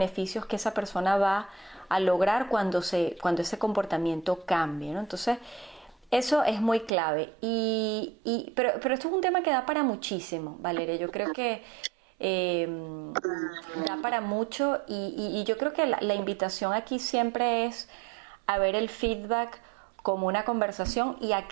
que esa persona va a lograr cuando ese comportamiento cambie, ¿no? Entonces, eso es muy clave, pero esto es un tema que da para muchísimo, Valeria. Yo creo que da para mucho y yo creo que la invitación aquí siempre es a ver el feedback como una conversación y a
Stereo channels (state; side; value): drops out; left; at 6.9 s